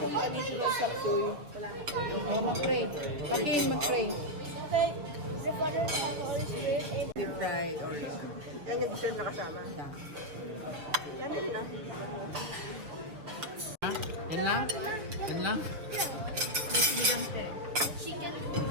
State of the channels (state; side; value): late; left; 7.1 ms